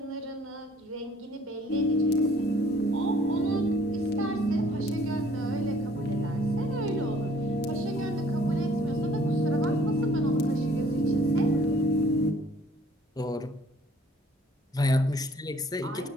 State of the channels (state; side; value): normal; both; correlation 0.58